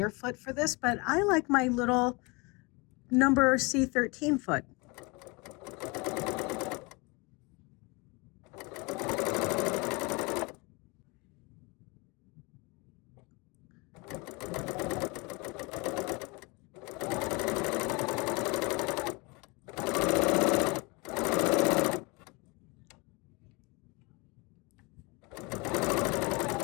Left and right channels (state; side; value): quieter; right; 27.5 dB